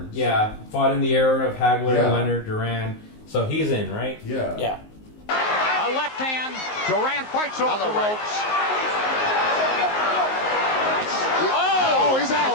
Yeah, fought in the era of Hagler, Yeah. Leonard, Duran. So he's in, right? Yeah. Yeah. A left hand. Durant fights off the ropes. Oh, he's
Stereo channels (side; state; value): right; late; 19 ms